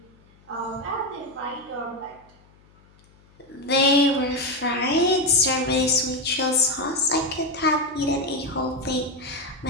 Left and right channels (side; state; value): left; noise; hum, 29 dB below the sound